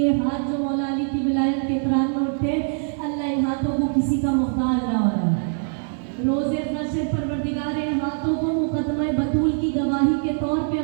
हाथ जो मौला अली की विलायत के इकरार में उठे, अल्लाह इन हाथों को किसी का मोहताज ना हो रहा है। रोज़े नशे परवरदिगार इन हाथों को मुकदमा बतूल की गवाही के तौर पे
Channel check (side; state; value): left; silent; digital silence